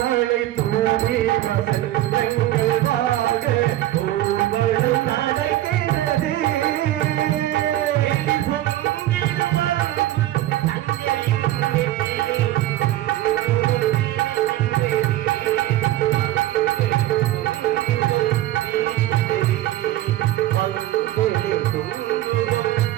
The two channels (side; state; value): left; quieter; 14.5 dB